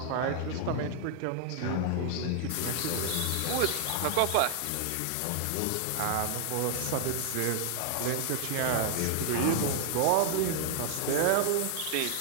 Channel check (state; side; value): different; both; correlation 0.00